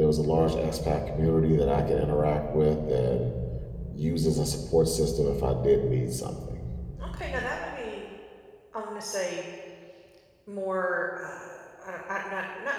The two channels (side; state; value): both; identical; correlation 1.00